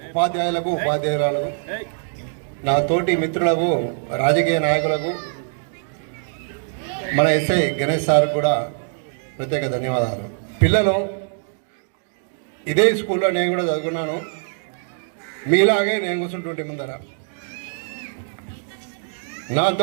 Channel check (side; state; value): left; silent; digital silence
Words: ఉపాధ్యాయులకు, ఉపాధ్యాయురాలకు, నా తోటి మిత్రులకు, రాజకీయ నాయకులకు, మన ఎస్ఐ గణేష్ సార్ కూడా ప్రత్యేక ధన్యవాదాలు. పిల్లలు ఇదే స్కూల్లో నేను కూడా చదువుకున్నాను. మీలాగే నేను కూర్చుంటుంటే ముందర